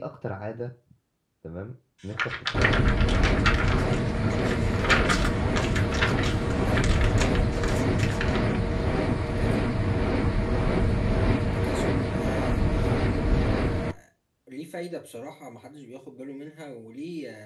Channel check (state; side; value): identical; both; correlation 1.00